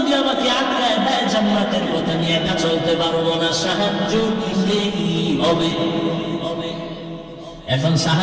আমাকে আটকায় দেয়, জান্নাতের পথে নিয়ে একা চলতে পারবো না। সাহায্য নিতেই হবে। এখন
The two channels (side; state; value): both; identical; correlation 1.00